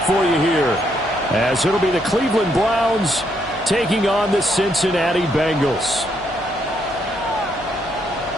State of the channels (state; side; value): noise; left; hum, 19 dB below the sound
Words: for you here, as it'll be the Cleveland Browns taking on the Cincinnati Bengals.